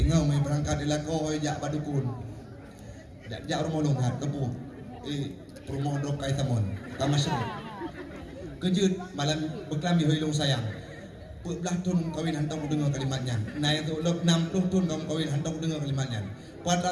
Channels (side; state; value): both; identical; correlation 1.00